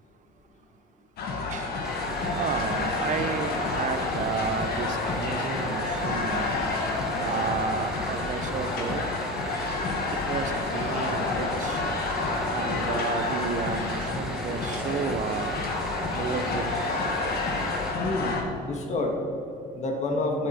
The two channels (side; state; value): both; normal; correlation 0.25